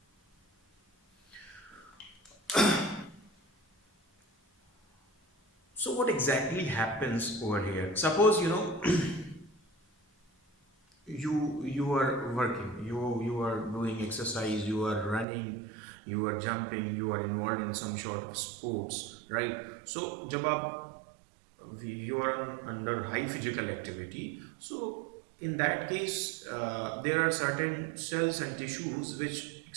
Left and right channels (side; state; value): left; drops out; at 15.2 s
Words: So what exactly happens over here? Suppose you are working, you are doing exercise, you are running, you are jumping, you are involved in some sort of sports, right? So जब आप you are under high physical activity, so in that case there are certain cells and tissues which